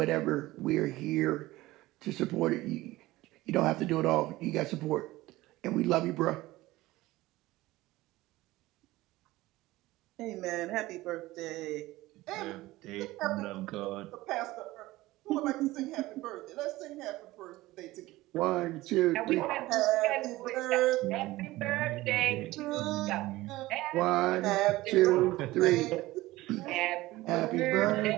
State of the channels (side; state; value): left; quieter; 18.2 dB